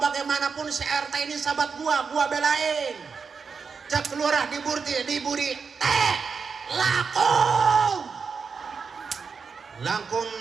bagaimanapun si RT ini sahabat gua belain. Cek lurah diburi teh laku lakum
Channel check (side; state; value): left; quieter; 5.5 dB